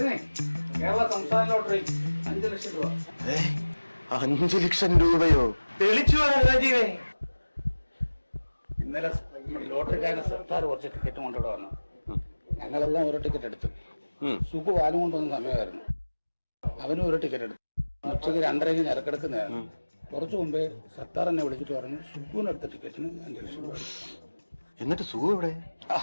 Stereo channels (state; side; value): inverted; both; correlation -1.00